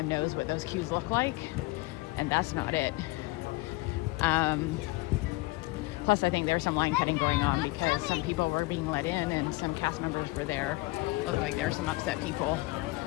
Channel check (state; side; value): quieter; right; 22.0 dB